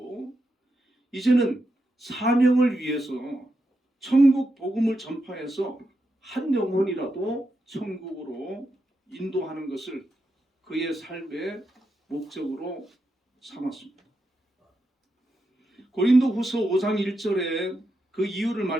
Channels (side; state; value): both; normal; correlation 0.85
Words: 이제는 사명을 위해서 천국 복음을 전파해서 한 영혼이라도 천국으로 인도하는 것을 그의 삶의 목적으로 삼았습니다. 고린도후서 5장 1절에 그 이유를